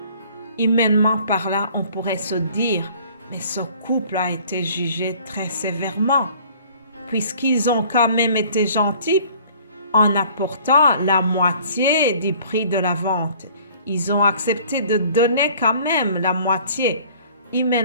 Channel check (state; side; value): inverted; both; correlation -0.53